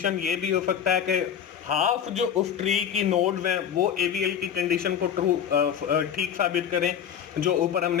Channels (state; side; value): quieter; right; 8.5 dB